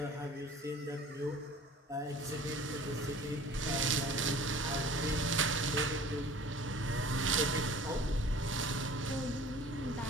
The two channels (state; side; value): normal; both; correlation 0.45